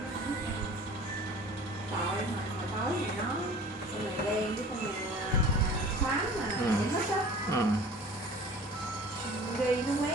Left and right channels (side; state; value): both; normal; correlation 0.44